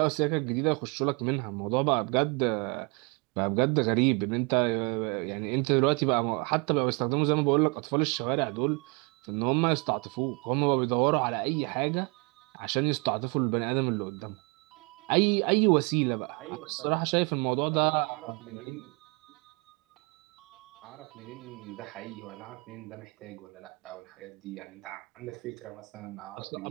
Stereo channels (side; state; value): left; quieter; 31.1 dB